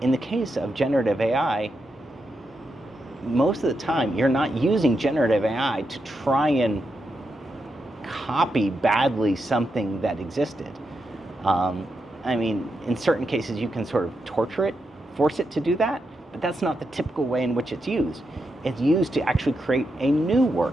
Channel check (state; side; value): normal; both; correlation 0.85